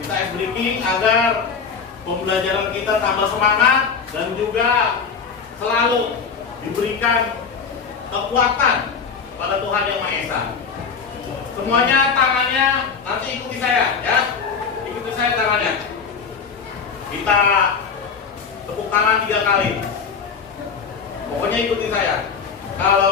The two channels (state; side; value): quieter; right; 5.8 dB